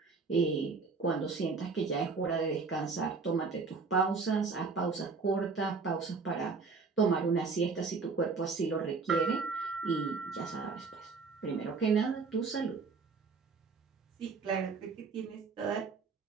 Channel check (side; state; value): left; quieter; 4.6 dB